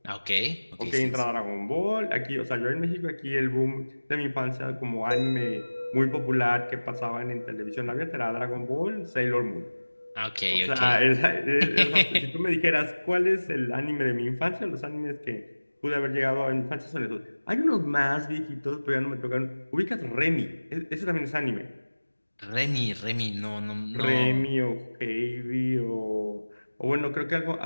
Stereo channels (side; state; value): both; inverted; correlation -1.00